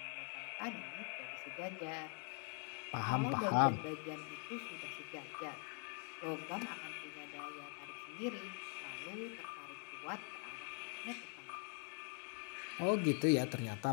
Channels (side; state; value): right; quieter; 39.6 dB